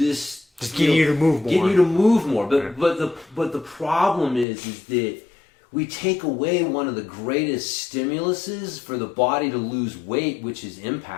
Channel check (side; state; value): right; drops out; at 4.5 s